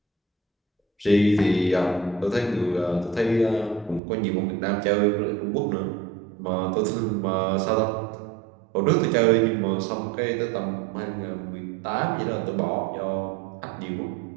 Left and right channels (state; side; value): drops out; left; at 4.0 s